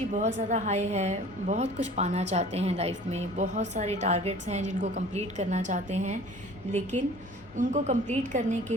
बहुत ज़्यादा high है, बहुत कुछ पाना चाहते हैं life में, बहुत सारे टारगेट्स हैं जिनको कंप्लीट करना चाहते हैं, लेकिन उनको कंप्लीट करने के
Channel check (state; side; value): normal; both; correlation 0.46